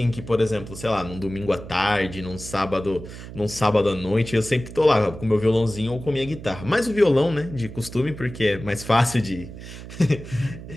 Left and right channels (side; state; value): right; noise; hum, 13 dB below the sound